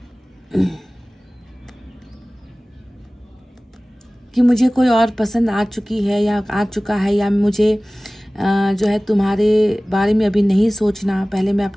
कि मुझे कोई और पसंद आ चुकी है या आ चुका है, या मुझे जो है तुम्हारे बारे में अभी नहीं सोचना, पहले मैं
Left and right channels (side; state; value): both; normal; correlation 0.98